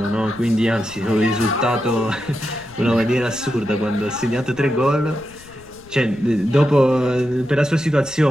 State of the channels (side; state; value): left; noise; rumble, 23 dB below the sound